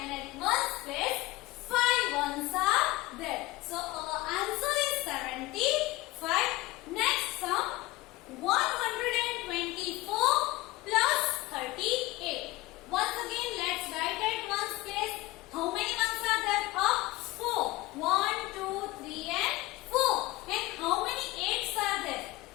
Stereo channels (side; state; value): right; quieter; 19.6 dB